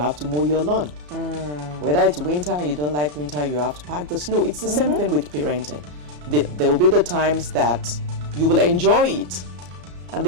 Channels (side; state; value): left; late; 34 ms